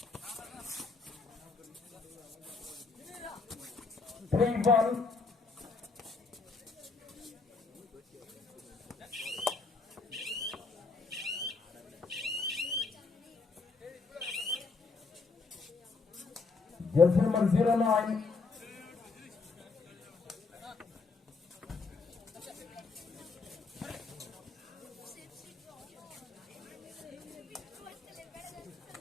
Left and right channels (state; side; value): quieter; right; 4.2 dB